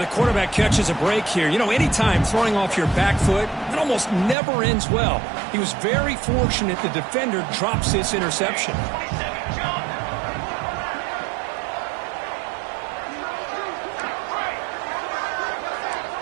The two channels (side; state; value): left; drops out; at 4.4 s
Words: quarterback catches a break here. You know, anytime throwing off your back foot, it almost never ends well. He was very fortunate the defender drops this interception.